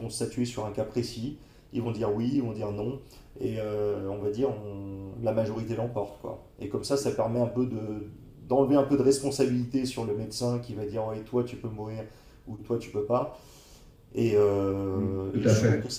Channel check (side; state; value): both; identical; correlation 1.00